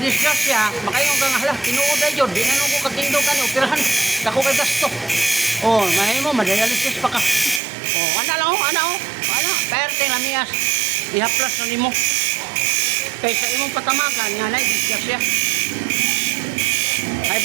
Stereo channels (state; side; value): drops out; left; at 7.6 s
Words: siya, makayong kang hala, tinuod ay jud, di na nung ko katindo ka ni operahan. Dako kay gasto. Oh, mahimo madialysis pa ka. Oh, ana lang oh, ana oh. Ana, perte lamiyas. Ihaplas na nimo. Kaysa imong patamakan nga na discuss siya. High